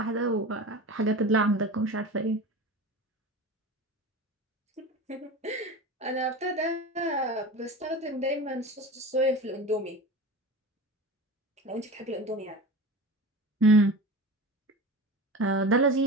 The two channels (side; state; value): both; normal; correlation 0.31